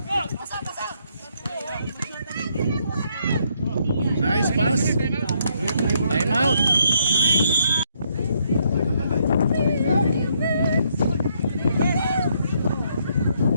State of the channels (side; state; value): both; inverted; correlation -0.73